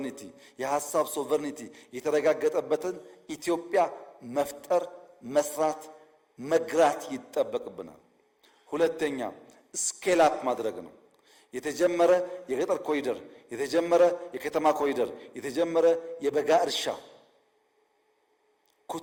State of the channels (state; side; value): identical; both; correlation 1.00